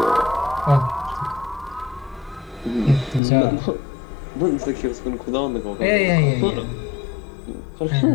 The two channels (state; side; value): drops out; right; at 3.2 s